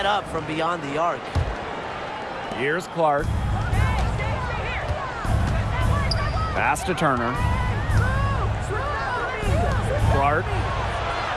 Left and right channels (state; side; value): identical; both; correlation 1.00